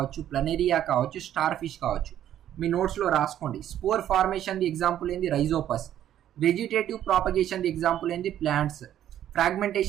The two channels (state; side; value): quieter; left; 11.3 dB